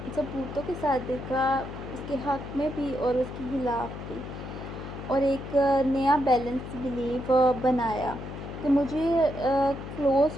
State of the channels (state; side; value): noise; left; hum, 9 dB below the sound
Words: सबूतों के साथ देखा, उसके हक़ में भी और उसके खिलाफ़ भी, और एक नया बैलेंस बिलीव बनाया कि मुझे